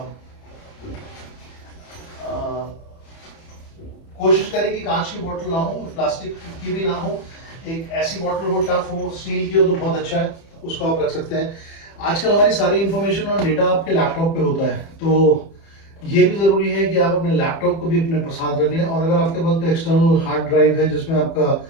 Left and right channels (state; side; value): late; right; 30 ms